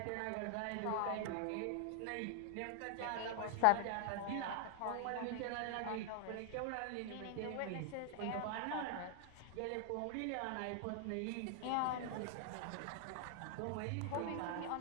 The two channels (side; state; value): both; different; correlation 0.00